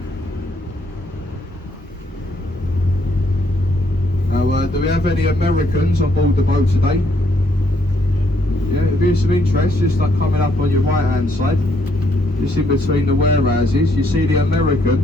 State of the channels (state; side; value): normal; both; correlation 0.71